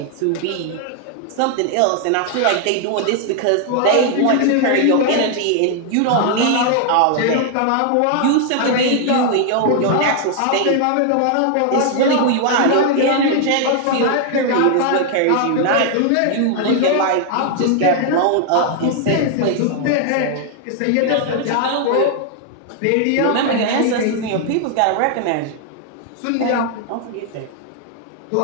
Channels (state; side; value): different; both; correlation 0.00